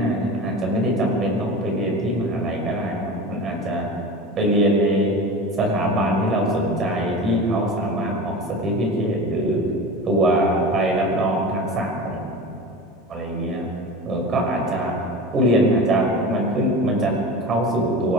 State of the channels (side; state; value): both; normal; correlation 0.31